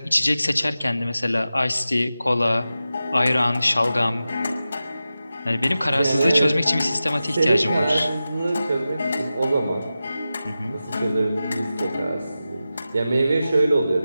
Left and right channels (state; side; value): inverted; both; correlation -0.93